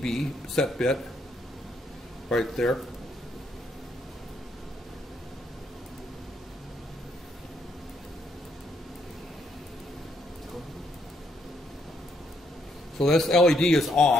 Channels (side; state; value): both; normal; correlation 0.74